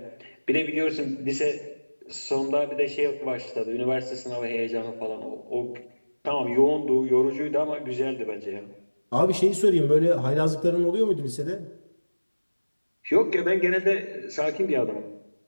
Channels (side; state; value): both; inverted; correlation -1.00